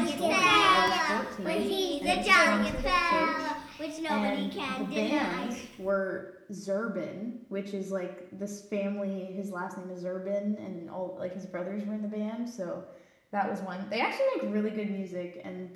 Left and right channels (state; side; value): identical; both; correlation 1.00